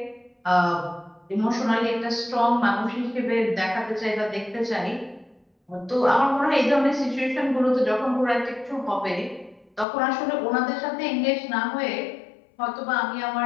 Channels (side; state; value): right; drops out; at 9.9 s